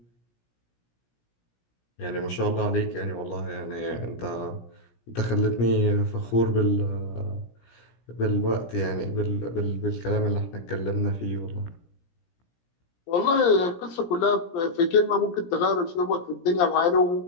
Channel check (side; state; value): right; late; 17 ms